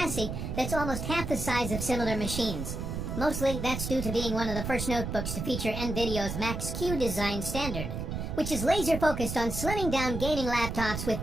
that's almost half the size of similar machines. Mostly that's due to being one of the first notebooks to feature NVIDIA's Max-Q design standard, which is laser focused on slimming down gaming laptops with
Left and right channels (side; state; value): right; noise; rumble, 4 dB below the sound